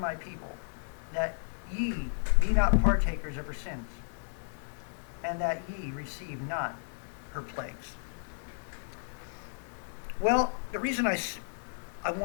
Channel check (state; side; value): silent; right; digital silence